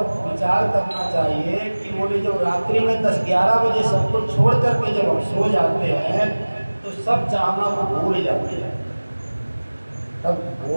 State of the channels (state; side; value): inverted; both; correlation -1.00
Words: विचार करना चाहिए कि बोले जब रात्रि में 10-11 बजे सब कुछ छोड़ करके जब हम सो जाते हैं तो सब चाहना को भूल जाते हैं, तब